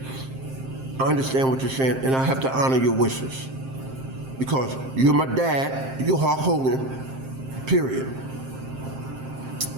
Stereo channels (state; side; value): late; left; 7.6 ms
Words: I understand what you're saying, and I have to honor your wishes. Because you're my dad, you're Hulk Hogan, period.